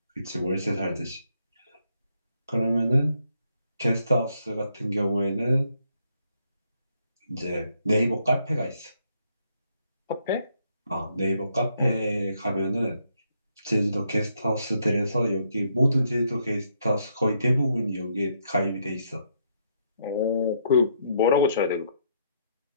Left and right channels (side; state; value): both; inverted; correlation -0.73